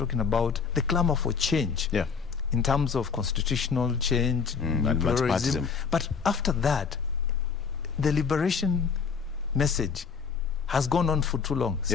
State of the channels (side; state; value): right; quieter; 5.9 dB